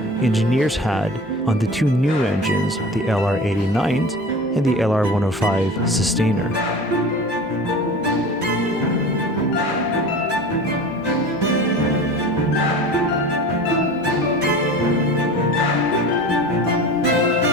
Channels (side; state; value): both; normal; correlation 0.37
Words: engineers had on the two new engines, the LR-89s and the LR-105 Sustainer.